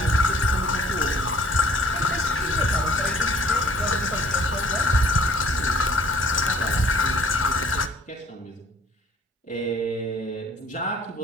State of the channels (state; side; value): normal; both; correlation 0.57